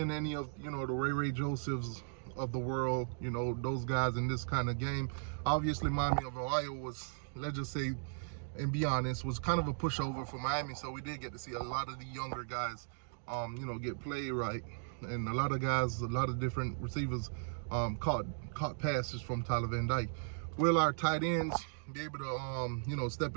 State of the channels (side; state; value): left; silent; digital silence